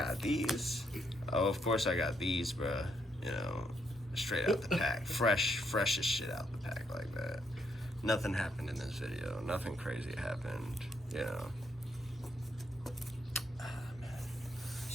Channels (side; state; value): both; normal; correlation 0.75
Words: these. Oh, of course I got these, bruh. You know, straight out the pack. Freshest shit out the pack like that. Nothing happened in this video. Nothing crazy happened, you know.